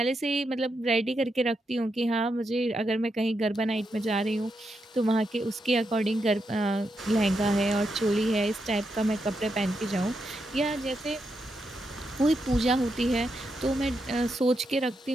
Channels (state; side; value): normal; both; correlation 0.84